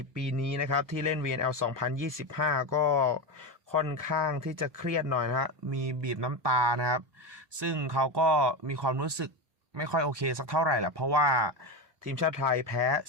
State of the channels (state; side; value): late; left; 1.2 ms